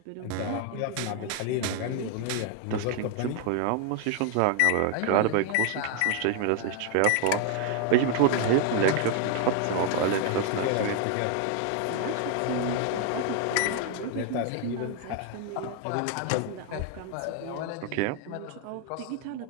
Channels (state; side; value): different; both; correlation 0.00